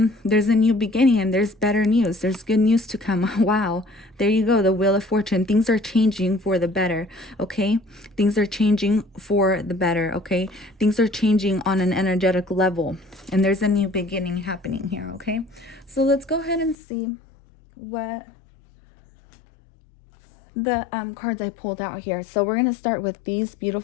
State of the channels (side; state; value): right; drops out; at 16.8 s